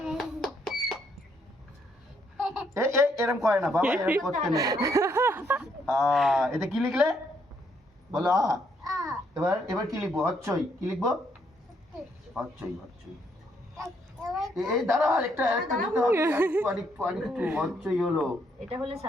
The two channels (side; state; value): both; normal; correlation 0.72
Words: এরম করে না বাবা, এরম করতে নেই। এটা কি লিখলে বলো? এবার এবার কি লিখবো? হচ্ছই। কি লিখবো? হচ্ছই হচ্ছই। এই দাঁড়া, আরেকটা দিতে হবে। আরেকটু হচ্ছই হলো। এটা হলে